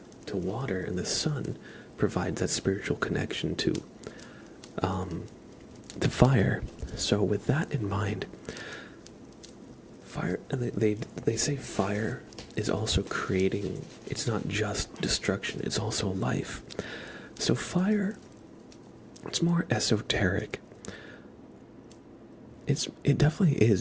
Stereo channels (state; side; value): identical; both; correlation 1.00